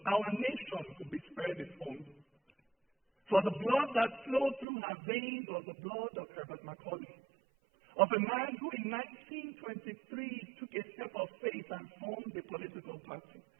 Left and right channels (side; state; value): left; drops out; at 4.7 s